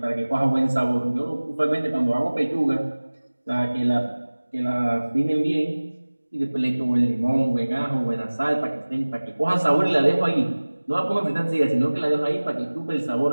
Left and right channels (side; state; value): both; inverted; correlation -1.00